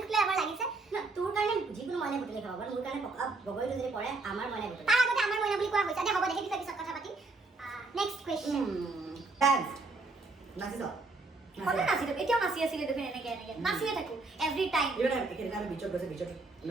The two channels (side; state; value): left; quieter; 3.6 dB